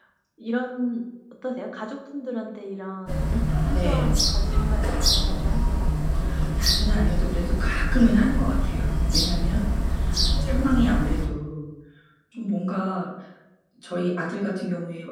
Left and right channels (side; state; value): both; identical; correlation 1.00